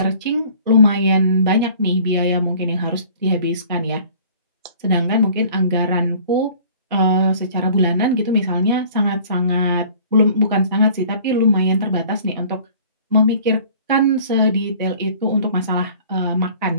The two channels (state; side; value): inverted; both; correlation -0.50